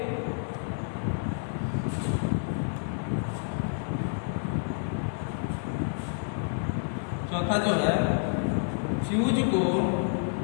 चौथा जो है, फ्यूज को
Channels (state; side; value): silent; right; 59 dB below the other